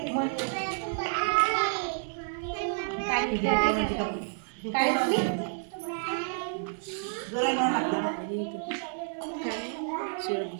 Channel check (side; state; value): left; silent; 57 dB below the other